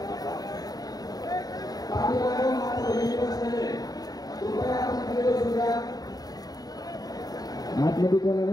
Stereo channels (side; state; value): right; late; 0.18 ms